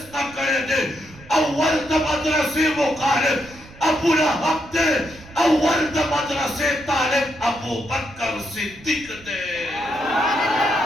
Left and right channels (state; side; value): noise; right; rumble, 21 dB below the sound